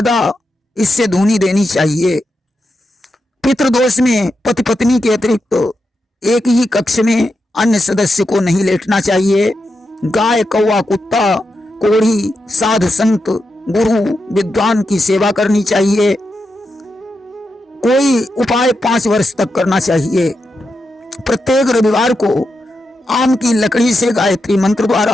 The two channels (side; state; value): both; normal; correlation 0.87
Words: इससे धूनी देनी चाहिए। पितृदोष में पति पत्नी के अतिरिक्त एक ही कक्ष में अन्य सदस्य को नहीं लेटना चाहिए। गाय, कौवा, कुत्ता, कोढ़ी, साधु संत, गुरु, विद्वान की सेवा करनी चाहिए। कोई उपाय 5 वर्ष तक करना चाहिए। प्रत्येक रविवार को आम की लकड़ी से गायत्री मंत्र